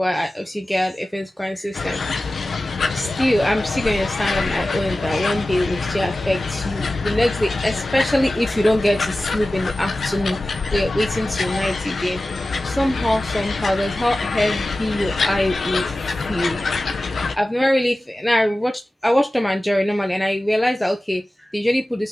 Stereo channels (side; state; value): both; normal; correlation 0.95